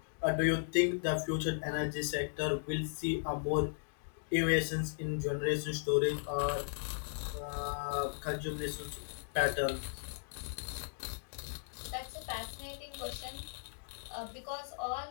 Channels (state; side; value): silent; right; digital silence